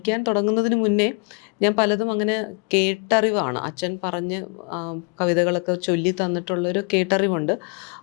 തുടങ്ങുന്നതിന് മുന്നേ ഞാൻ പലതും അങ്ങനെ കേട്ടറിവാണ്. അച്ഛൻ പറഞ്ഞ് കവിതകളൊക്കെ ചൊല്ലി തന്നിട്ടുള്ളൊരു കേട്ടറിവുണ്ട്.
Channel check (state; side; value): quieter; right; 35.0 dB